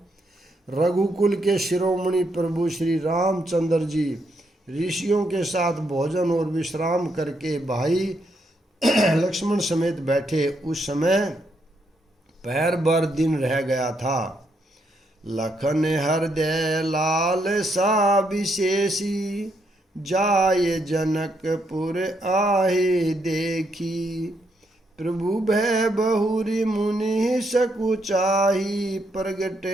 रघुकुल के शिरोमणि प्रभु श्री रामचंद्र जी ऋषियों के साथ भोजन और विश्राम करके भाई लक्ष्मण समेत बैठे। उस समय पहर भर दिन रह गया था। लखन हृदय लाल सा विशेषी, जाय जनकपुर आहे देखी। प्रभु भय बहुरी मुनि सकुचाही, प्रगट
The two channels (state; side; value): normal; both; correlation 0.77